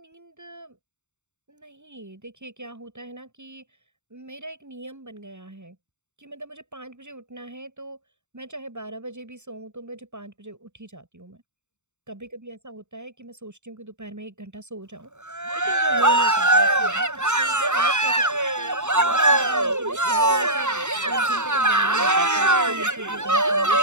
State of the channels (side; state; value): left; late; 0.84 ms